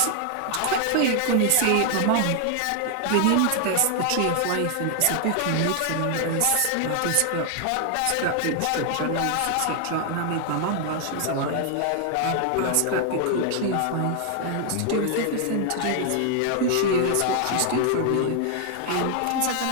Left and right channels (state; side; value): different; both; correlation 0.00